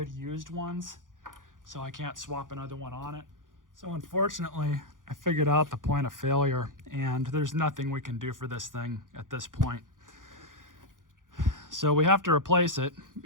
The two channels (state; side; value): late; left; 0.89 ms